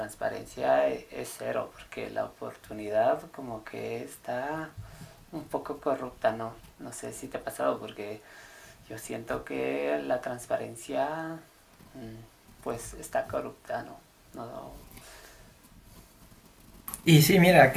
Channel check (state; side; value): identical; both; correlation 1.00